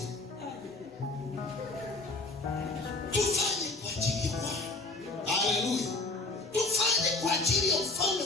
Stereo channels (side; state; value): right; quieter; 3.4 dB